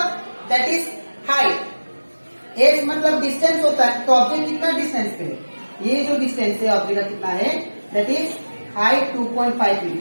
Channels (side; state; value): both; inverted; correlation -1.00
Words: दैट इज हाइट, s मतलब डिस्टेंस होता है, तो ऑब्जेक्ट कितना डिस्टेंस पे है, ये जो डिस्टेंस है ऑब्जेक्ट का कितना है, दैट इज हाइट 2.5